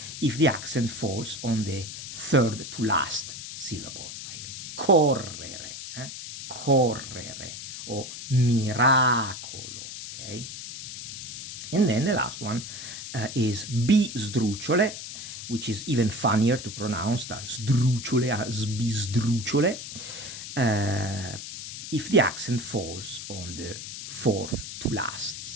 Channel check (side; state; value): left; noise; hiss, 9 dB below the sound